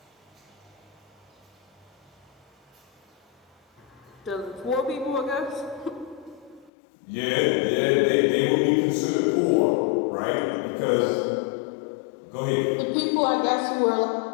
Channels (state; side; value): drops out; right; at 6.7 s